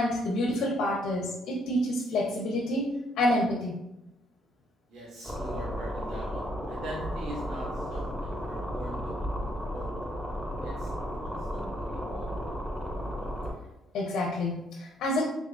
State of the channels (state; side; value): normal; both; correlation 0.70